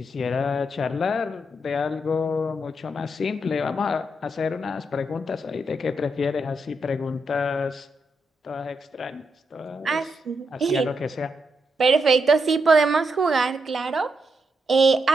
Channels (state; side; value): normal; both; correlation 0.82